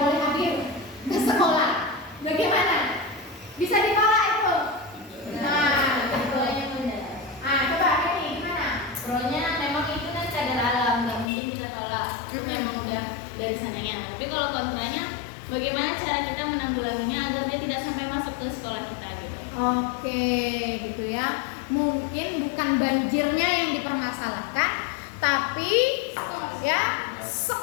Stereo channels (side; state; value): right; drops out; at 11.2 s